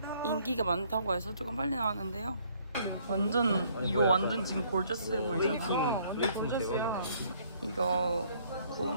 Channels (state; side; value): inverted; both; correlation -0.63